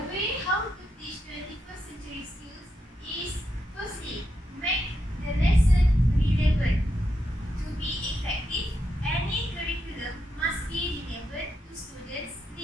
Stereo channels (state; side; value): normal; both; correlation 0.83